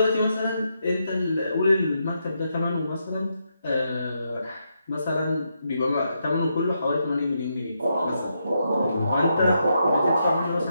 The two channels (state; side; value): inverted; both; correlation -0.81